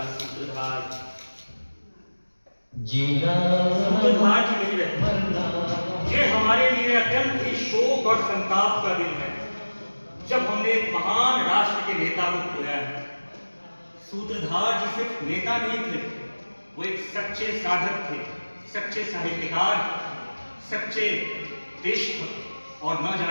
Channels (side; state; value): both; inverted; correlation -1.00